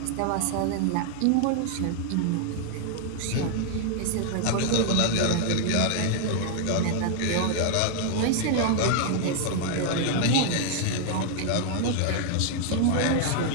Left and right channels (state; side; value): different; both; correlation 0.00